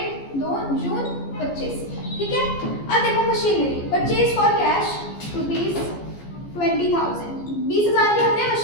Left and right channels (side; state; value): right; late; 14 ms